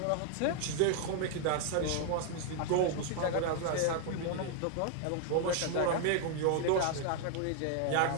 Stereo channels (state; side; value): different; both; correlation 0.00